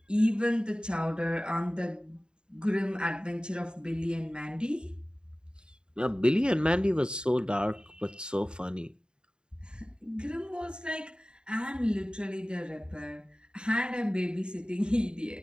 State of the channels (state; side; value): late; left; 0.049 ms